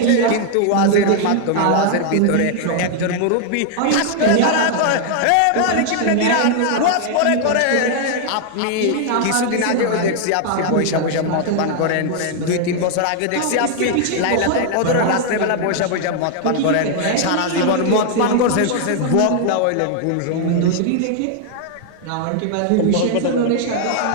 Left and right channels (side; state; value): both; different; correlation 0.00